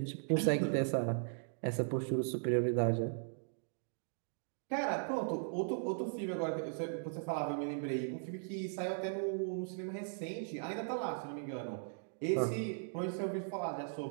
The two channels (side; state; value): left; silent; digital silence